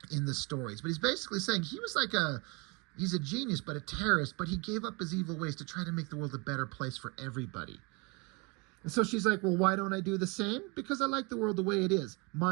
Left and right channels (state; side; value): quieter; left; 29.4 dB